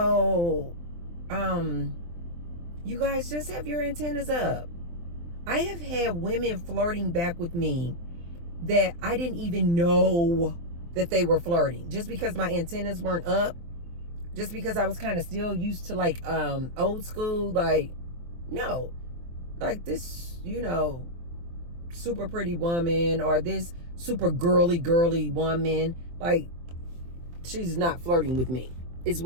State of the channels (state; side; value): late; left; 23 ms